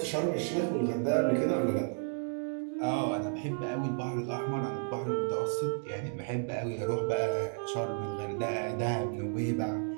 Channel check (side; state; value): left; silent; 56 dB below the other